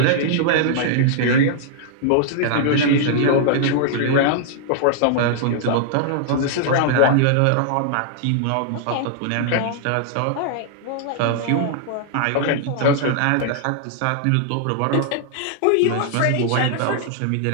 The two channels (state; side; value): different; both; correlation -0.01